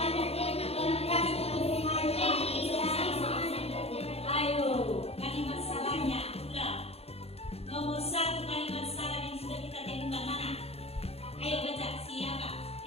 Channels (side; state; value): right; late; 0.29 ms